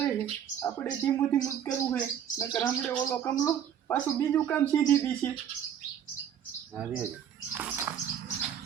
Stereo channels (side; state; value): left; quieter; 9.2 dB